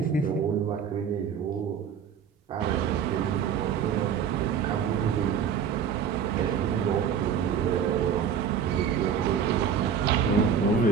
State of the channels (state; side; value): quieter; left; 7.5 dB